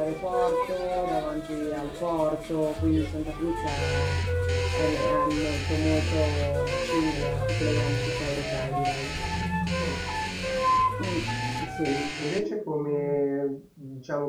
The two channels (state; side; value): identical; both; correlation 1.00